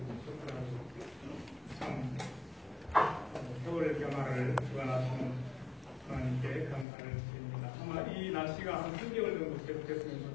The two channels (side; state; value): right; drops out; at 6.9 s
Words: 좋더라고요. 참 겨울 변화를 주관하시는 하나님께 감사를 드립니다. 아마 이 날씨가 한 3개월 정도